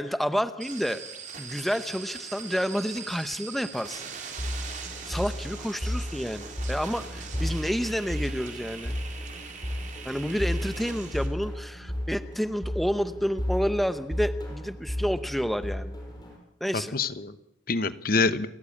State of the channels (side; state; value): both; normal; correlation 0.86